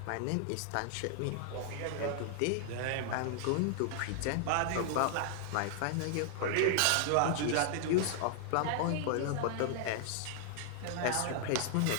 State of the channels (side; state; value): both; different; correlation 0.00